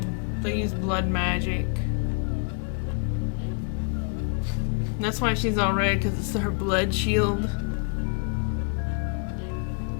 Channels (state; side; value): quieter; right; 39.0 dB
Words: they use blood magic. That's why she's all red, because it's her blood shield.